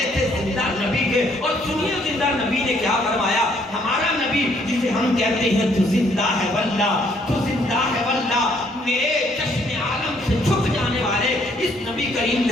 تھے زندہ نبی کے، اور سنیے زندہ نبی نے کیا فرمایا، ہمارا نبی جسے ہم کہتے ہیں تو زندہ ہے واللہ، تو زندہ ہے واللہ، میرے چشم عالم سے چھپ جانے والے اس نبی کریم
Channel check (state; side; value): normal; both; correlation 0.66